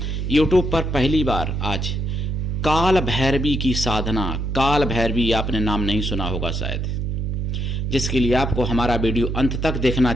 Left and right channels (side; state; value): right; noise; hum, 2 dB below the sound